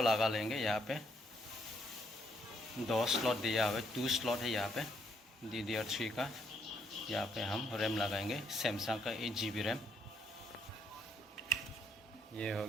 लगा लेंगे। यहाँ पे 2 स्लॉट दिया हुआ है, 2 स्लॉट है यहाँ पे DDR3 का। यहाँ पे हम रैम लगाएंगे सैमसंग का 8 GB रैम। ये हो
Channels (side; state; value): both; normal; correlation 0.72